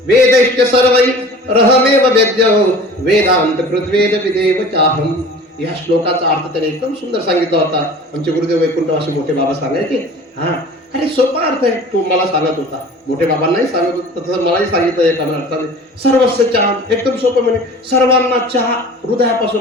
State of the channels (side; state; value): both; normal; correlation 0.42